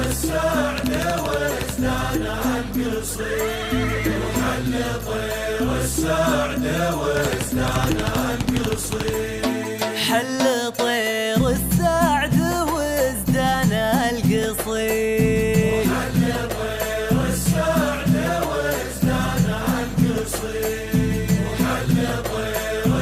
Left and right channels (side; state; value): both; identical; correlation 1.00